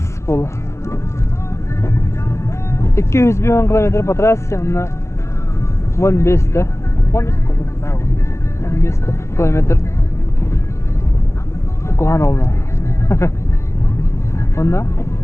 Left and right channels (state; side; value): late; right; 0.14 ms